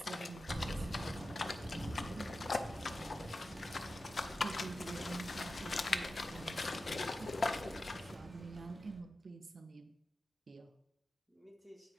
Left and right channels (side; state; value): both; normal; correlation 0.93